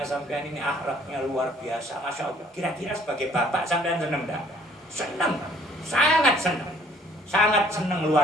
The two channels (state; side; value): normal; both; correlation 0.59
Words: sampean ini akhlaknya luar biasa, Masya Allah. Kira-kira sebagai bapak sampean senang enggak? Senang, sangat senang. Sangat senang